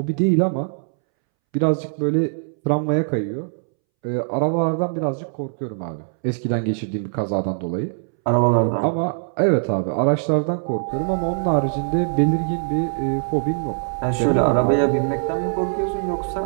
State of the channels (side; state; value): left; silent; 64 dB below the other